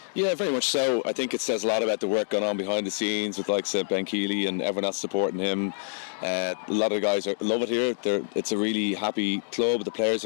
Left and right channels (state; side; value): silent; right; digital silence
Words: Yeah, very much so. I think it says a lot about the work going on behind the scenes with like Ben Keeley and everyone else supporting him. A lot of the guys love it here. It's a really happy club. The players